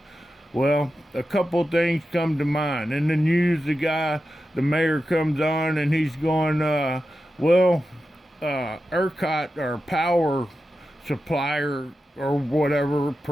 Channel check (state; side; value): normal; both; correlation 0.91